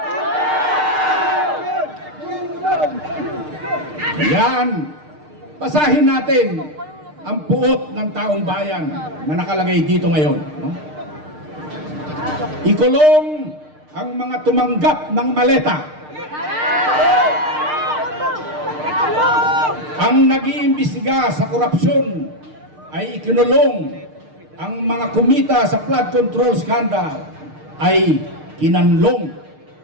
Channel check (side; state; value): left; late; 6.6 ms